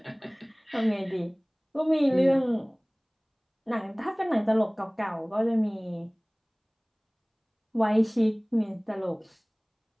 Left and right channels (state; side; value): identical; both; correlation 1.00